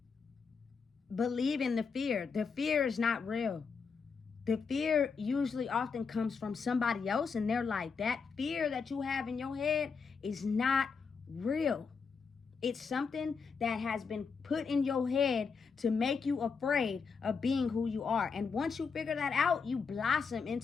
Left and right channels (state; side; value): quieter; right; 5.4 dB